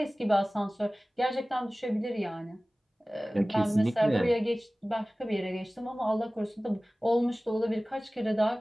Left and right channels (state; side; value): normal; both; correlation 0.98